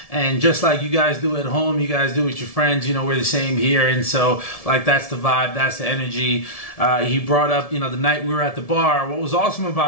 And just like you guys do at home, you guys do with your friends, we're the same here. And so, that's the vibe, that's the energy. He brought up, the night we were at the bar. What was awesome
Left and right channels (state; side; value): late; right; 1.7 ms